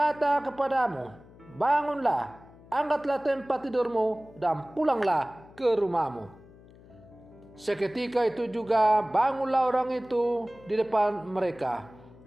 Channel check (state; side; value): noise; left; hum, 23 dB below the sound